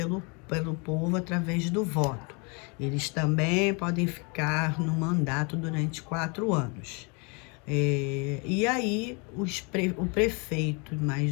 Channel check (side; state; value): right; quieter; 32.5 dB